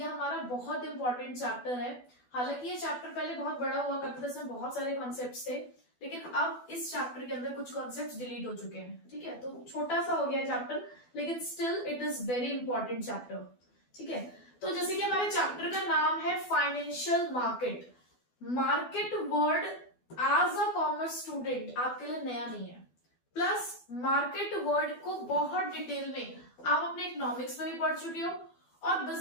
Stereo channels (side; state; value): right; late; 12 ms